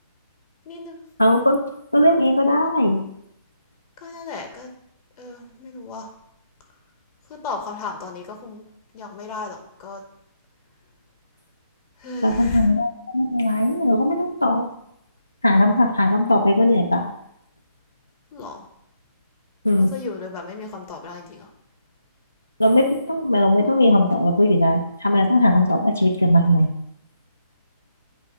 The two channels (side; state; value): both; inverted; correlation -0.84